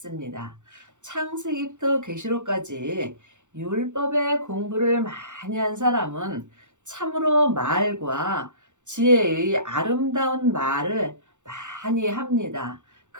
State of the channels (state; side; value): late; left; 0.85 ms